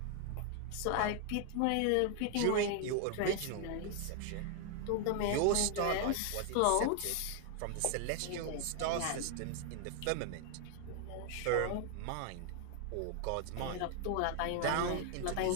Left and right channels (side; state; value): both; different; correlation 0.00